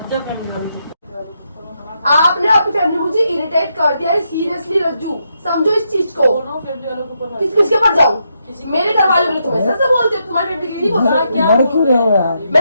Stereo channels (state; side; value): inverted; both; correlation -0.81